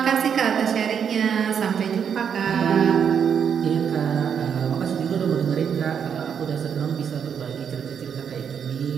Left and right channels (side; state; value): left; quieter; 7.6 dB